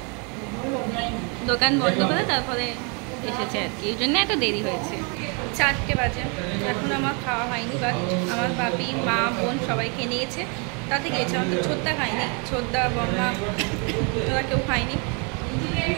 দোকান বন্ধ করে তারপরে এসেছে আর কি, এই জন্য এত দেরি হয়েছে। 4টে বাজে, এখন আমার খাওয়া হয়নি, বাট আমার বাপি, মা, বোন সবাই খেয়ে নিয়েছে, তাতে গিয়েছে। আমার তো ছোটদা খায়নি, ছোটদা, বম্মা ওরা কেউ খায়নি।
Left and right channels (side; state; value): left; quieter; 34.7 dB